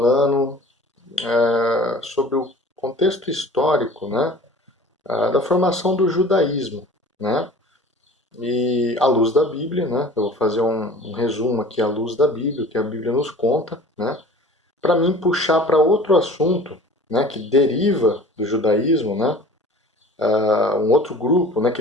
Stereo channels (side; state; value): both; normal; correlation 0.44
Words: sobre o contexto histórico, né, da formação do judaísmo, né, e à luz da Bíblia, né, eu vou fazer um resumo aqui à luz da Bíblia, o que a Bíblia nos conta, né, para mim puxar para outro assunto, né, que deriva do judaísmo, né, um outro grupo, né, que